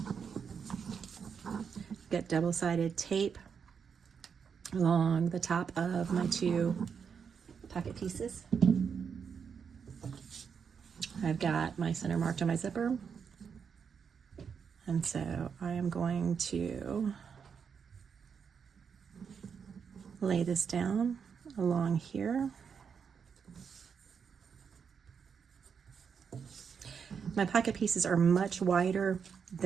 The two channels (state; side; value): quieter; left; 6.6 dB